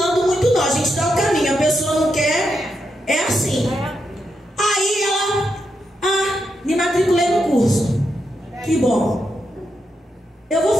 muito não, a gente dá o caminho, a pessoa não quer, é assim. Aí ela, me matriculei no curso. Que bom. Eu vou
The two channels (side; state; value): both; normal; correlation 0.84